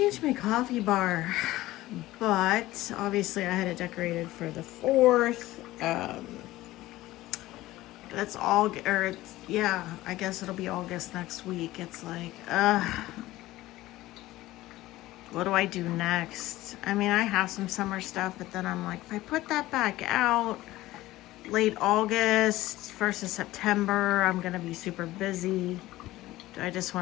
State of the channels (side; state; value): right; quieter; 16.9 dB